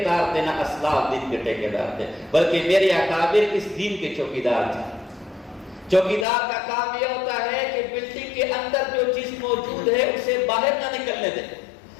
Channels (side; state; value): right; drops out; at 6.2 s